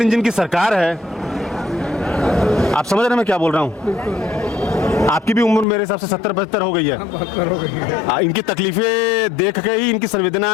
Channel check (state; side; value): drops out; right; at 5.7 s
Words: इंजन की सरकार है। आप समझ रहे हैं मैं क्या बोल रहा हूँ? आपकी भी उम्र मेरे हिसाब से 70-75 हो गई है। इनकी तकलीफें देख के ही, इनकी